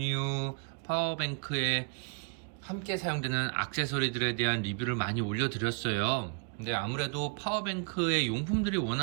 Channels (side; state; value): left; quieter; 39.3 dB